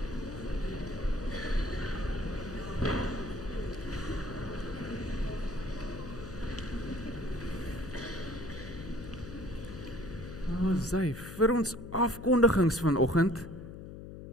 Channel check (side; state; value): left; noise; hum, 11 dB below the sound